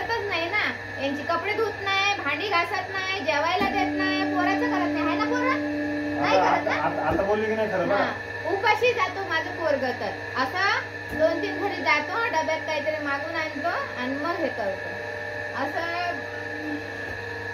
नाही ना. यांची कपडे धुत नाही, भांडी घासत नाही, जेवायला देत नाही, पोराचं करत नाही. आहे ना पोरं? नाही करत ना? आता बोलली की नाही खरं बघा. हा, उपाशी जातो माझं पोरग तर. असं 2-3 घरी जातो, डब्यात काहीतरी मागून आणतो आणि मग हे करतो. असं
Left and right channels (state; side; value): identical; both; correlation 1.00